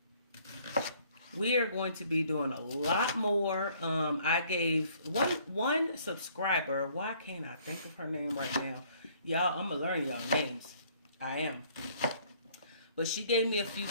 We are going to be doing a lot more. I gave one subscriber, why can't I think of her name right now? Y'all, I'm going to learn y'all names. I am. But she gave me a few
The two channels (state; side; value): inverted; both; correlation -0.60